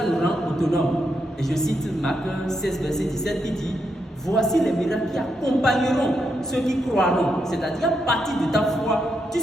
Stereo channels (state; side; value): normal; both; correlation 0.82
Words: nous rend autonomes. Et je cite Marc 16, verset 17 qui dit: voici les miracles qui accompagneront ceux qui croiront. C'est-à-dire, à partir de ta foi, tu